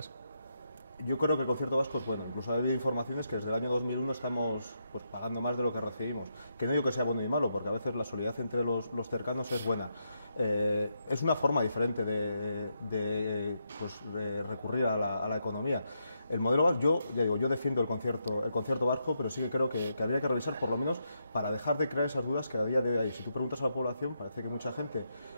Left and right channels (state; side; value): inverted; both; correlation -0.81